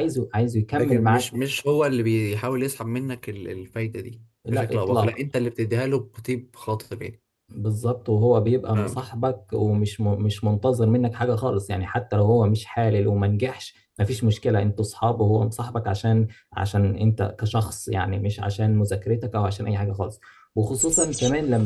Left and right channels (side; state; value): both; identical; correlation 1.00